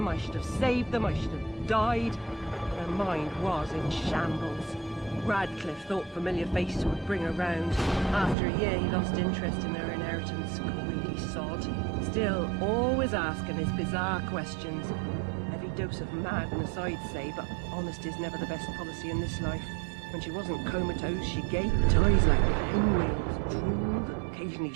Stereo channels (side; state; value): left; drops out; at 8.3 s